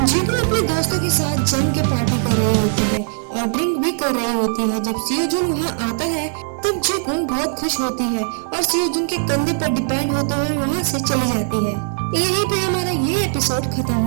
यूक्यूंग अपने दोस्तों के साथ जम के पार्टी कर रही होती है और ड्रिंक भी कर रही होती है। जब सियोजुन वहाँ आता है तब यूक्यूंग बहुत खुश होती है और सियोजुन के कंधे पर डिपेंड होते हुए वहाँ से चली जाती है। यहीं पे हमारा ये एपिसोड खत्म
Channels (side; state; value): left; silent; digital silence